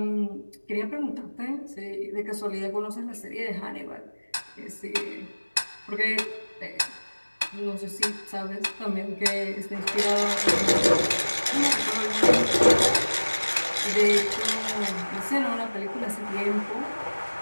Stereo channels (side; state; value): both; inverted; correlation -1.00